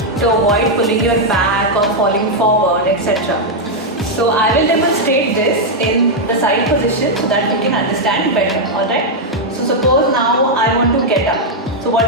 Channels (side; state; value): both; normal; correlation -0.02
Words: to avoid pulling your back or falling forward, etc. So I will demonstrate this in the side position so that you can understand better. Alright? So suppose now I want to get up. So what